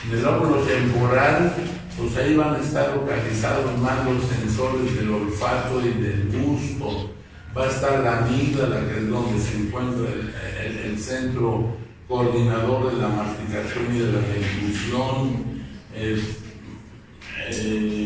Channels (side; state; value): both; identical; correlation 1.00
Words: Del lóbulo temporal, pues ahí van a estar localizados más los sensores del olfato y del gusto. Va a estar la amígdala, que es donde se encuentra el centro coordinador de la masticación y de la deglución.